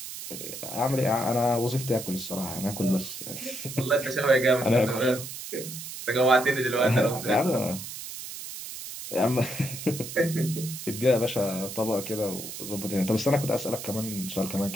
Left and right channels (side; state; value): right; noise; hiss, 9 dB below the sound